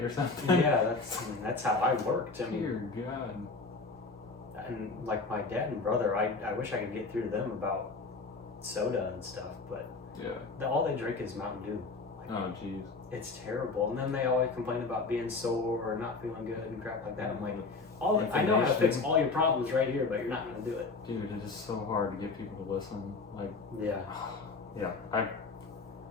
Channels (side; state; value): right; quieter; 4.0 dB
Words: or something. Yeah, that's how I worked. I mean, Dear God. and like my dad and brother, I wish I could get through to them about soda and stuff, but Yeah. all they drink is Mountain Dew. Like, Oh jeez. it's terrible. And then they always complain about being sore or not feeling good and crap like that. I'm like, I know how to fix all your problems right here, but you're not gonna do it. Dude, it is so hard to get people to listen. Like, Yeah. yeah.